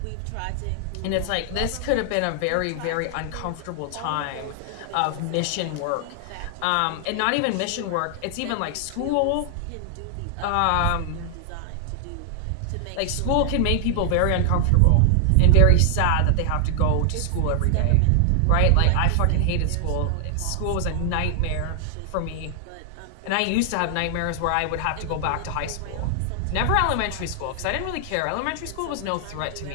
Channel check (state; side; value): different; both; correlation 0.00